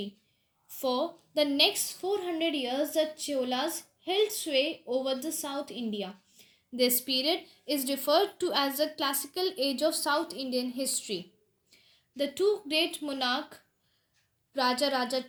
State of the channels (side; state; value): both; identical; correlation 1.00